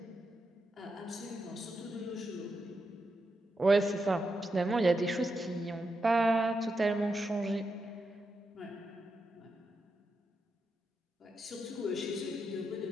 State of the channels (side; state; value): both; normal; correlation 0.85